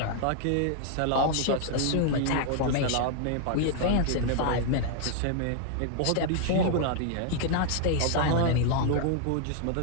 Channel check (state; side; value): different; both; correlation 0.00